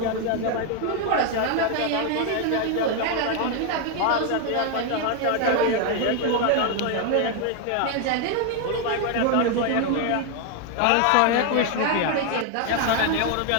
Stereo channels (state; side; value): different; both; correlation 0.00